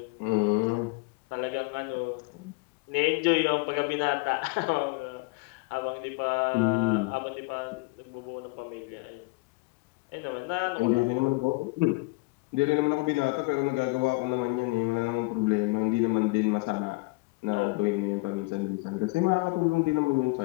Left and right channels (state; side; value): quieter; right; 25.9 dB